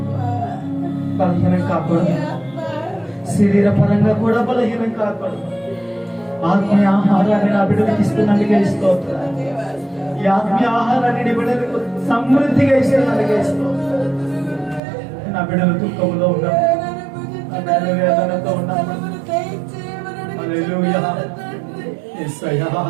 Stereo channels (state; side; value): drops out; left; at 14.8 s